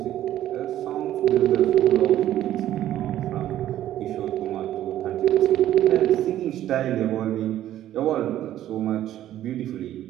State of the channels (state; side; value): quieter; left; 12.6 dB